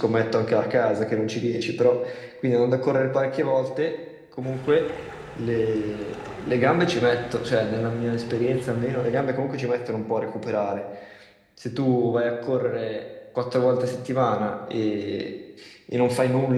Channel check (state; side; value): identical; both; correlation 1.00